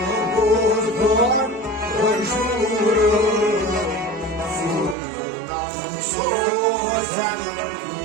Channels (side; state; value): left; drops out; at 5.0 s